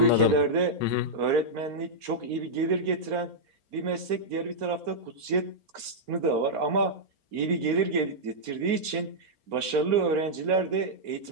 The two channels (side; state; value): left; late; 4.3 ms